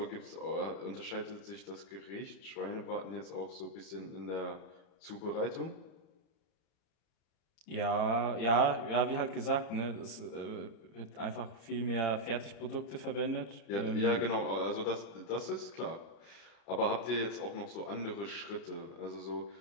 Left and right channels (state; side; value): late; right; 32 ms